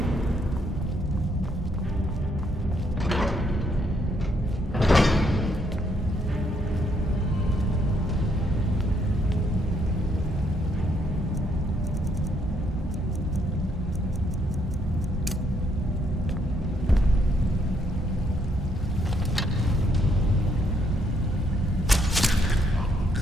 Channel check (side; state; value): both; normal; correlation 0.72